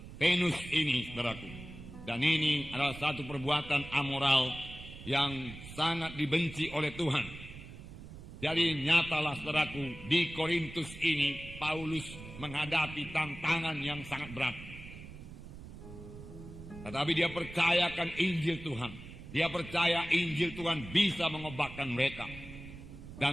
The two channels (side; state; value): right; noise; rumble, 14 dB below the sound